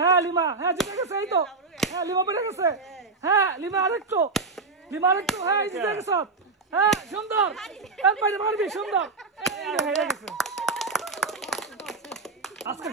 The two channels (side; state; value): left; quieter; 4.1 dB